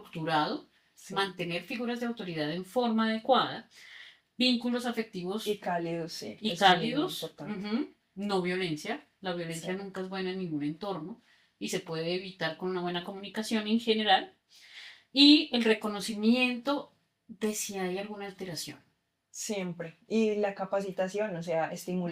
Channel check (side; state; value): both; identical; correlation 1.00